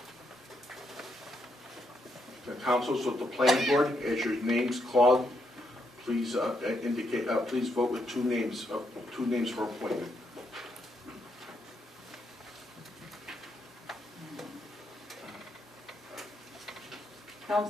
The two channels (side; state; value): both; normal; correlation 0.78